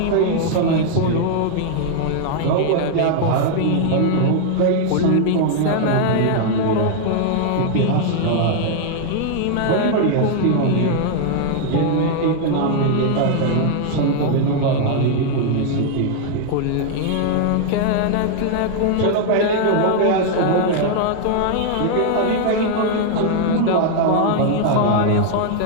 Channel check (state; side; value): different; both; correlation 0.00